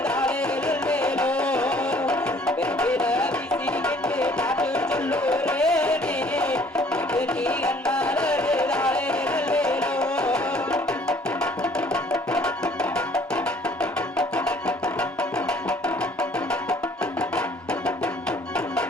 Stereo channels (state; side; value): normal; both; correlation 0.57